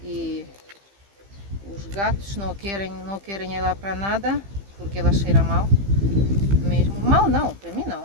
e os gatos não querem ela para nada, porque ela cheira mal mesmo. Mal não, para mim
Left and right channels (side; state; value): left; late; 15 ms